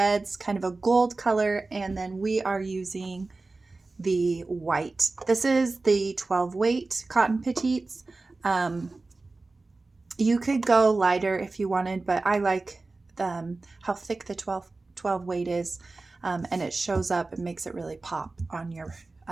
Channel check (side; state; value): left; quieter; 3.5 dB